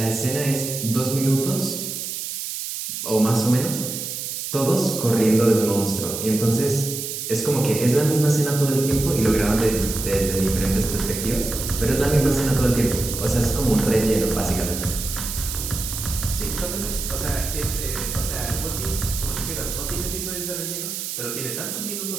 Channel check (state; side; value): noise; right; hiss, 5 dB below the sound